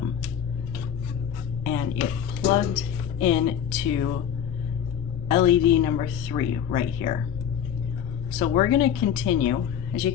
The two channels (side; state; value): right; quieter; 8.9 dB